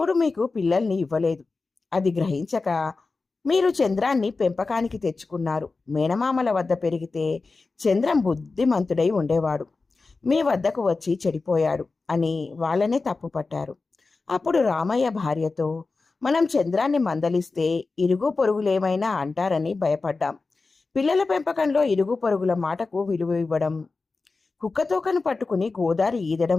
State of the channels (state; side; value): quieter; right; 3.9 dB